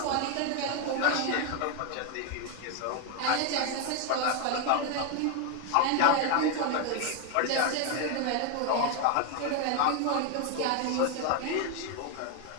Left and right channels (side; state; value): both; different; correlation 0.01